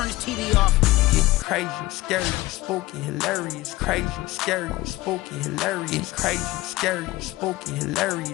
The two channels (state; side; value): quieter; right; 18.8 dB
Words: his TV off. Getting crazy, scary, spooky, hilarious. Crazy, scary, spooky, hilarious. Crazy, scary, spooky,